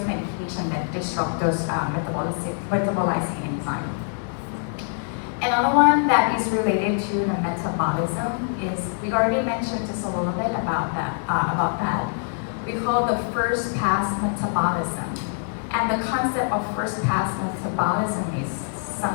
medications that disrupt those metabolizing enzymes. Another one that is related to the metabolism is, we already mentioned just a little bit about that. We call the first pass metabolism. And the concept of first pass metabolism is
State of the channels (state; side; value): silent; right; 62 dB below the other